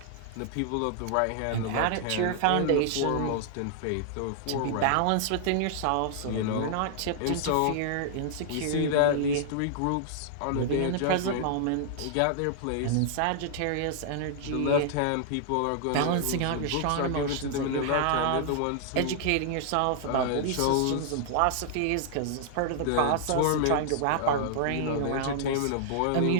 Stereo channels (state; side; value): different; both; correlation -0.01